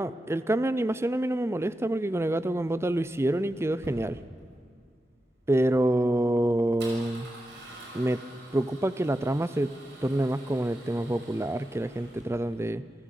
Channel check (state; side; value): normal; both; correlation 0.89